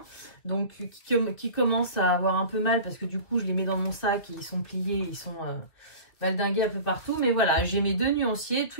donc qui commencent à avoir un peu mal parce que du coup je les mets dans mon sac et ils sont pliés, ils sont valdingués un peu partout. Mais voilà, j'ai mes deux nuanciers,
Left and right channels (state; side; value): late; right; 2.3 ms